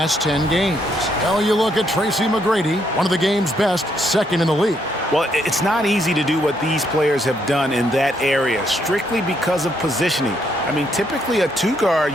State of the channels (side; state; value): both; normal; correlation 0.74